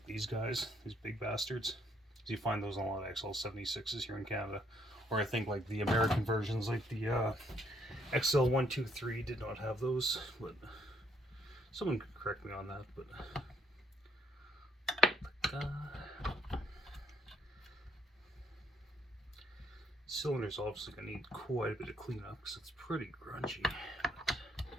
these guys, these big bastards. You find those on a lot of XL76s here in Canada. Or I think like the American versions, like the XL123 did not have those, but someone could correct me on that. But cylinder's obviously gonna need quite a bit of cleanup because it's pretty grungy.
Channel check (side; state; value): both; normal; correlation 0.70